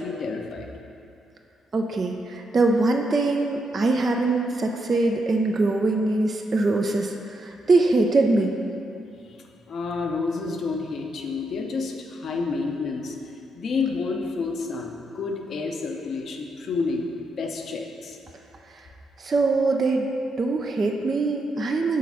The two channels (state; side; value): normal; both; correlation 0.81